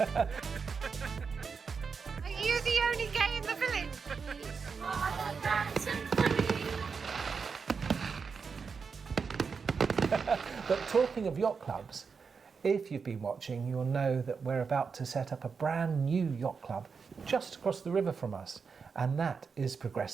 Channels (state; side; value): quieter; left; 5.5 dB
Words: you the only gay in the village? Oh, that's so funny. But talking of yacht clubs, if you've been watching, you'll know that we're about to set up a brand new yacht club just across the river from us, and that is